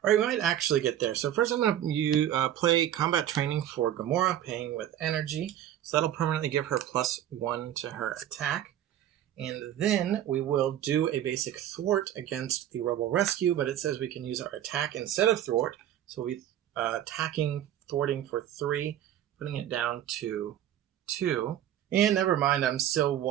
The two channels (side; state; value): left; quieter; 11.3 dB